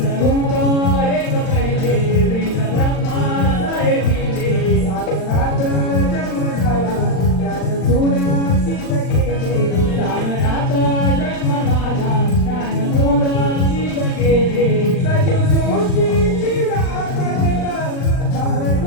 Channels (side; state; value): right; late; 39 ms